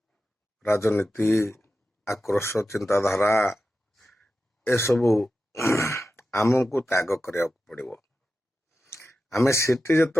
राजनीति आक्रोश चिंताधारा ए सबू आमको त्याग करिया पड़िबो। आमे सेठी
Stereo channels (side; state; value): both; normal; correlation 0.92